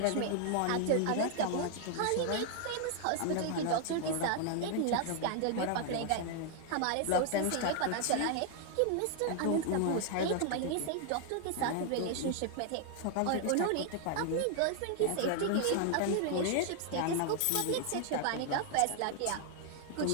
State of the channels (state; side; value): different; both; correlation 0.00